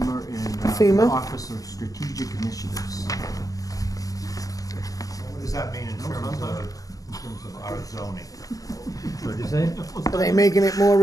and FEMA? the Office of Strategic Initiatives. What does that mean in terms of our zoning? What'd you say? Are they making it more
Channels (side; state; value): right; late; 0.17 ms